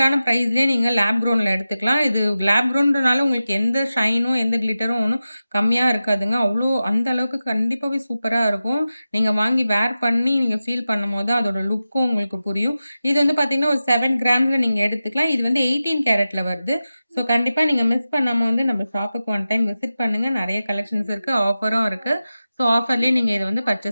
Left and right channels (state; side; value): inverted; both; correlation -0.93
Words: பிரைஸ்லயே நீங்க லேப் க்ரௌன்ல எடுத்துக்கலாம். இது லேப் க்ரௌன்றனால உங்களுக்கு எந்த ஷைனும், எந்த கிளிட்டரும் ஒண்ணும் கம்மியா இருக்காதுங்க. அந்த அளவுக்கு கண்டிப்பாவே சூப்பரா இருக்கும். நீங்க வாங்கி வேர் பண்ணி நீங்க ஃபீல் பண்ணும்போது அதோட லுக்கும் உங்களுக்கு புரியும். இது வந்து பார்த்தீங்கன்னா, ஒரு 7 கிராம்ஸ்ல நீங்க எடுத்துக்கலாம். இது வந்து 18 கேரட்ல வருது. ஸோ கண்டிப்பா நீங்க மிஸ் பண்ணாம வந்து நம்ம ஷாப்புக்கு ஒன் டைம் விசிட் பண்ணுங்க. நெறைய கலெக்ஷன்ஸ் இருக்கு. ஆஃபரும் இருக்கு. ஸோ ஆஃபர்லயே நீங்க இத வந்து